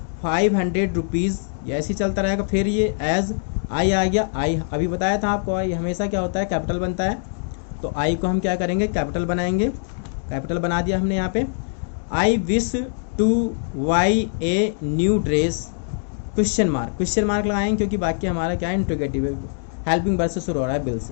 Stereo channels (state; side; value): silent; right; digital silence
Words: 500 rupees, ये ऐसे ही चलता रहेगा। फिर ये एज आई आ गया, आई अभी बताया था आपको, आई हमेशा क्या होता है, कैपिटल बनता है। तो आई को हम क्या करेंगे, कैपिटल बनाएंगे, कैपिटल बना दिया हमने यहाँ पे। आई wish to buy a new dress, question mark लगाएंगे, क्योंकि वाक्य हमारा क्या है, इंट्रोगेटिव है, हेल्पिंग वर्ब से शुरू हो रहा है, बिल